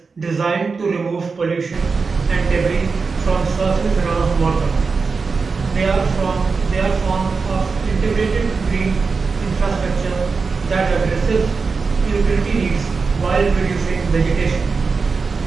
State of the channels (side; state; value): left; quieter; 4.7 dB